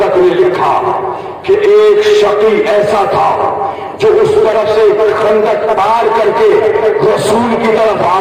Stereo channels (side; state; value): both; identical; correlation 1.00